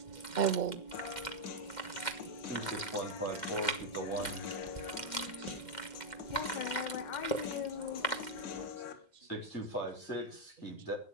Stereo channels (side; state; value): right; late; 2.1 ms